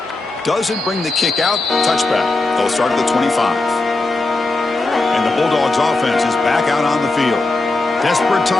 Doesn't bring the kick out. Touchback. They'll start at the 25. And the Bulldogs offense is back out on the field. Desperate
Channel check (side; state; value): right; quieter; 3.2 dB